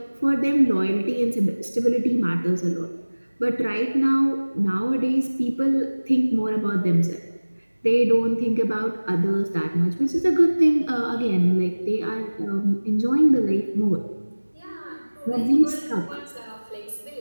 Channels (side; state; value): both; inverted; correlation -1.00